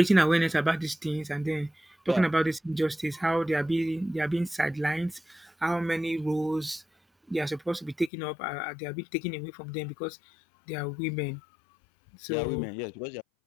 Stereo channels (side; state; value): right; drops out; at 8.1 s